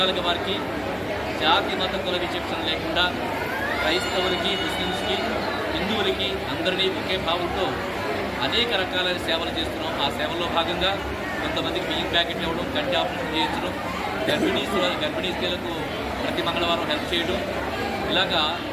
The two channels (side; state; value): both; identical; correlation 1.00